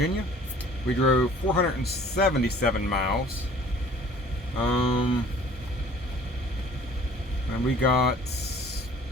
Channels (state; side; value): normal; both; correlation 0.51